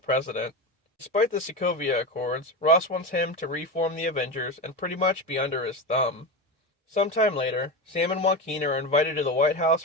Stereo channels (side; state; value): both; normal; correlation 0.20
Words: Despite the Sokovia Accords, Ross wants him to reform the Avengers and pretty much be under his thumb. Sometime later, Sam and Joaquin are invited to the White House